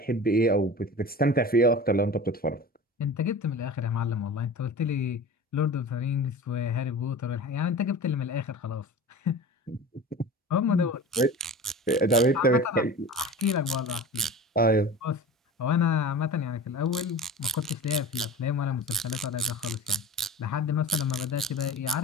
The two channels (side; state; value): both; normal; correlation 0.36